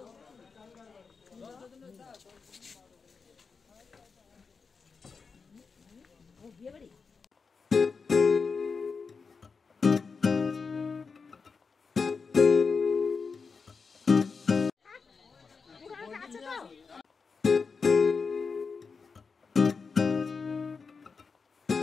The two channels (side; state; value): right; quieter; 5.0 dB